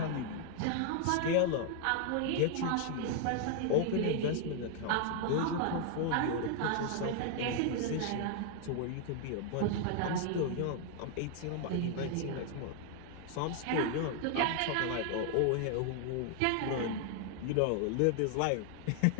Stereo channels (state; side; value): different; both; correlation 0.00